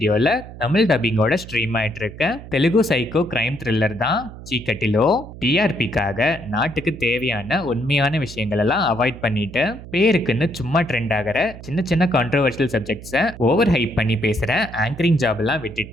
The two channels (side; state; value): right; noise; hum, 14 dB below the sound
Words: தமிழ் டப்பிங்கோட ஸ்ட்ரீம் ஆயிட்டு இருக்க தெலுங்கு சைக்கோ கிரைம் த்ரில்லர் தான் சீக்கட்டிலோ. டிஆர்பிக்காக நாட்டுக்கு தேவையான உண்மையான விஷயங்கள் எல்லாம் அவாய்ட் பண்ணிட்டு பேருக்குன்னு சும்மா ட்ரெண்ட் ஆகிற சின்ன சின்ன கான்ட்ரோவர்ஷியல் சப்ஜெக்ட்ஸை ஓவர் ஹைப் பண்ணி பேசுற ஆங்கரிங் ஜாப் எல்லாம்